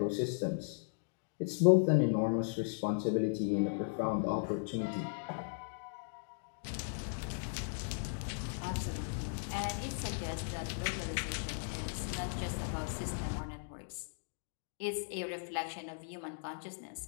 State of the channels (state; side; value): silent; right; digital silence